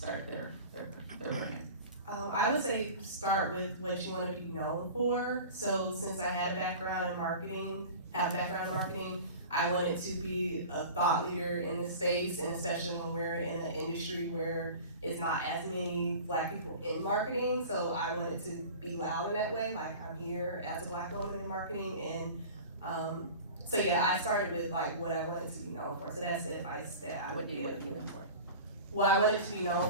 their brand? I would say start with what you want to be known for. So since I had a background in marketing, I wanted to be a thought leader in the space, and especially when we're in an industry where it's not as many Black people in marketing. So I wanted to be loud in that way, like I'm here as a Black woman in marketing. And so yeah, I started with like what I wanted to be known for. So that's the advice that I would give. What you look for? Well, I wanted to be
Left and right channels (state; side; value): inverted; both; correlation -0.38